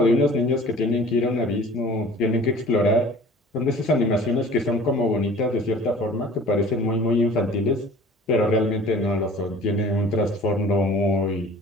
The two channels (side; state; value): both; normal; correlation 0.46